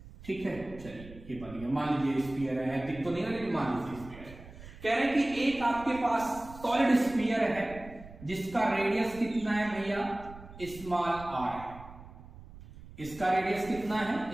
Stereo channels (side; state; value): right; noise; rumble, 17 dB below the sound